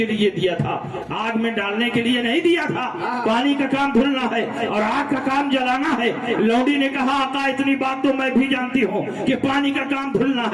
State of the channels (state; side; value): identical; both; correlation 1.00